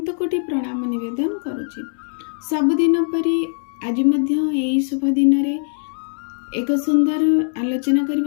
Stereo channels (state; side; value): silent; right; digital silence